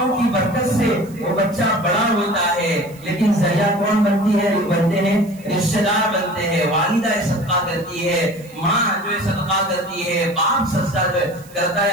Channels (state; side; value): noise; right; hiss, 24 dB below the sound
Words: کی برکت سے وہ بچہ بڑا ہوتا ہے. لیکن ذریعہ کون بنتی ہے بنتے ہیں رشتے دار بنتے ہیں. والدہ صدقہ کرتی ہے ماں جو ہے صدقہ کرتی ہے باپ سجدہ کرتا ہے